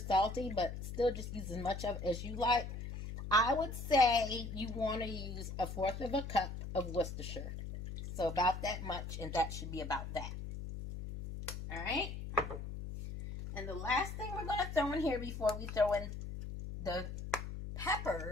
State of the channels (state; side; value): noise; left; hum, 7 dB below the sound